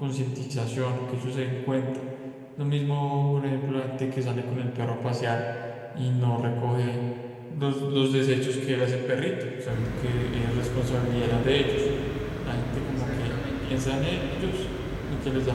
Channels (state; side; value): identical; both; correlation 1.00